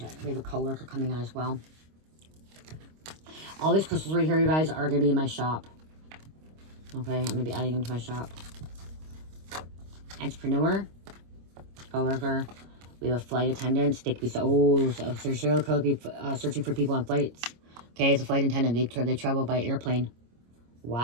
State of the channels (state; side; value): late; left; 25 ms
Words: We have a coworker coming out as well. All these crystals right here, you guys, are going to be in my shop. Okay, I'm going to be adding them to my shop. Entrepreneur. Coworker. We have a flight attendant. They could be serial killer be searching for people on flights. Okay, it's a flight attendant. They travel by airplane.